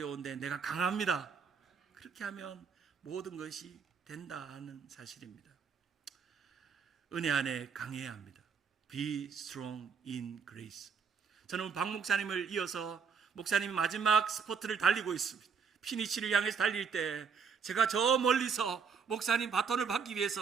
내가 강합니다. 그렇게 하면 모든 것이 된다는 사실입니다. 은혜 안에 강해야 합니다. Be strong in grace. 저는 박 목사님을 이어서 목사님이 마지막 스포트를 달리고 있습니다. 피니치를 향해서 달릴 때 제가 저 멀리서 목사님 바톤을 받기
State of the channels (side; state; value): left; quieter; 6.2 dB